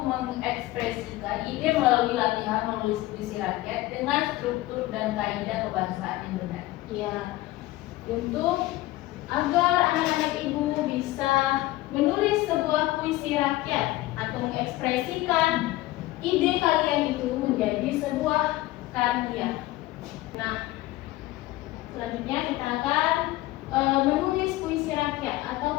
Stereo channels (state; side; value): quieter; right; 17.6 dB